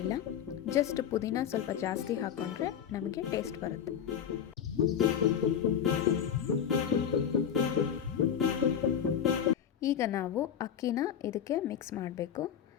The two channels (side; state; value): right; quieter; 8.6 dB